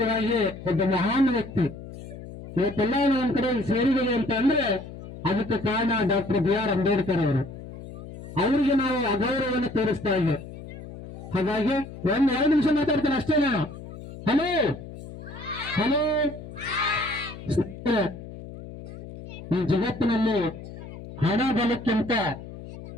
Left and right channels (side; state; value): left; noise; hum, 13 dB below the sound